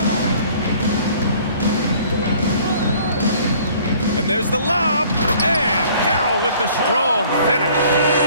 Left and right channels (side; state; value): both; inverted; correlation -0.55